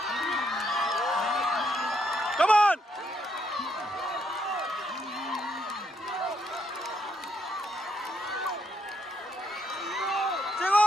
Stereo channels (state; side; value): normal; both; correlation 0.76